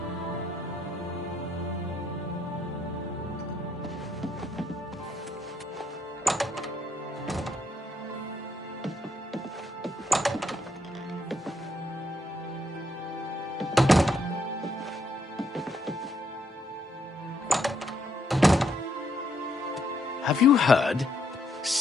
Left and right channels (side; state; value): both; normal; correlation 0.74